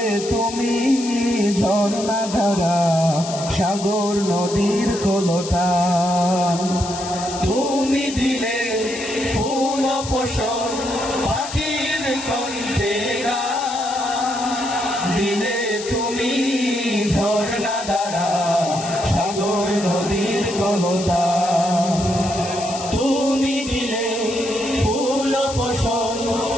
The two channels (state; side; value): noise; left; hiss, 10 dB below the sound